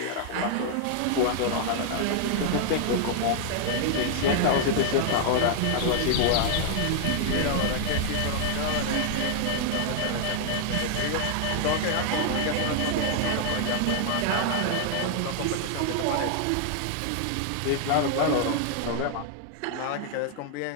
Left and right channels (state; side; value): different; both; correlation 0.00